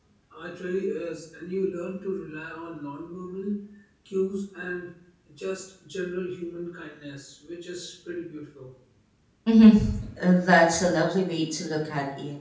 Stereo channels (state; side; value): identical; both; correlation 1.00